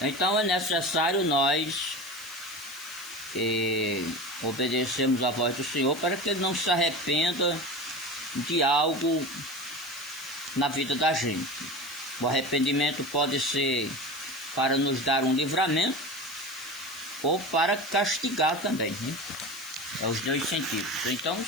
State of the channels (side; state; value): left; noise; hiss, 16 dB below the sound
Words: é necessário nós obedecermos a voz do Senhor para que Ele não se arrependa de algo na vida da gente. O arrependimento pode ser para nos dar um livramento ou para castigar também, né? É os dois sentidos. Então,